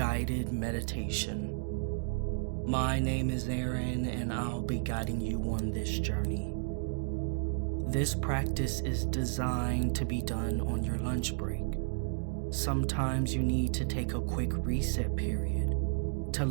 meditation. My name is Aaron and I'll be guiding you on this journey. This practice is designed to be done on your lunch break. Sometimes you need to take a quick reset period to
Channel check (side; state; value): left; silent; digital silence